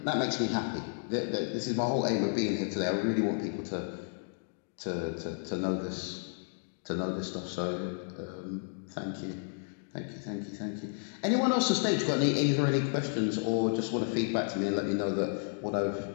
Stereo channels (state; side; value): silent; right; digital silence